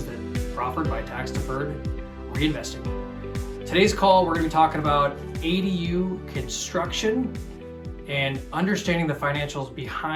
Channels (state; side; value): identical; both; correlation 1.00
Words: that are offered by tax-deferred reinvesting. Today's call, we're going to be talking about ADU construction and understanding the financials